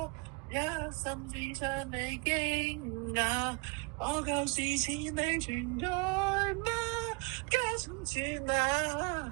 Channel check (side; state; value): left; quieter; 29.5 dB